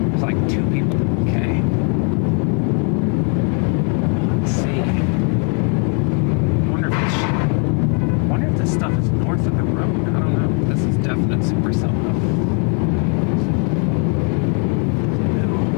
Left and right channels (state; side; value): quieter; right; 36.2 dB